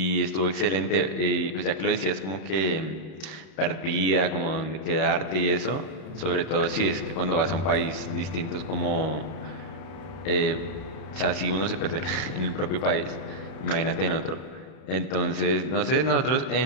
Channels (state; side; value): late; right; 31 ms